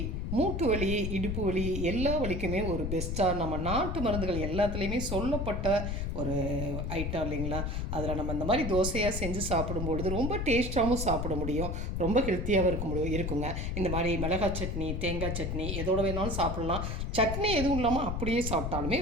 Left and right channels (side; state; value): left; noise; rumble, 2 dB below the sound